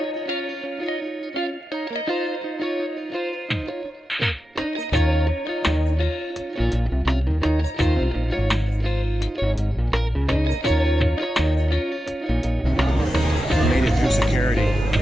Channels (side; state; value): both; normal; correlation 0.91